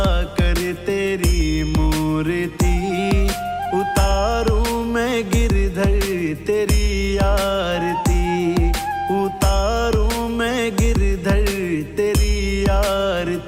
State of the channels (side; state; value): both; identical; correlation 1.00